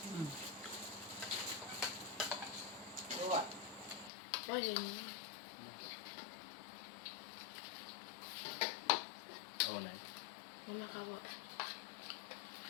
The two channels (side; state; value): right; drops out; at 4.1 s